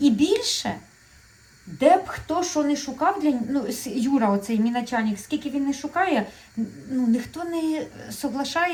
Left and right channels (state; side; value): identical; both; correlation 1.00